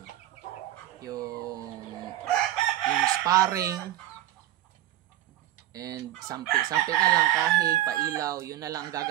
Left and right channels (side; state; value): left; quieter; 13.8 dB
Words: sparring, and sampi na lang, kahig, pailaw, yun na lang